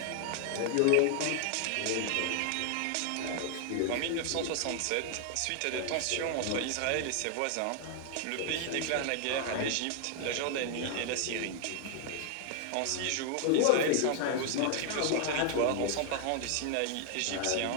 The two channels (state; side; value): different; both; correlation 0.00